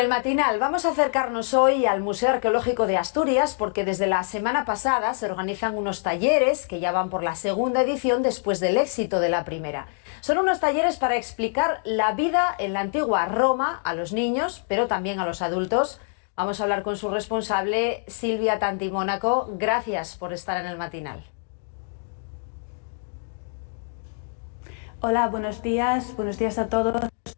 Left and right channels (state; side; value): silent; right; 60 dB below the other